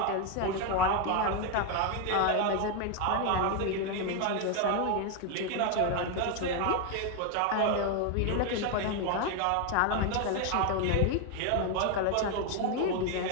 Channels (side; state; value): both; different; correlation 0.01